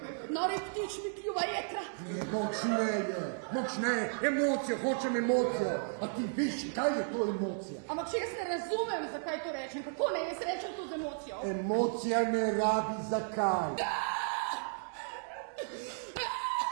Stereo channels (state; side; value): silent; left; digital silence